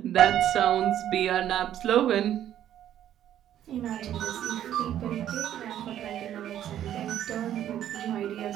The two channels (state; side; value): quieter; left; 11.2 dB